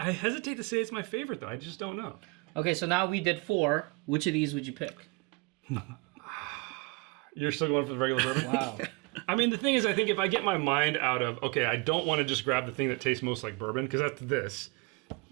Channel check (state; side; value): quieter; left; 26.6 dB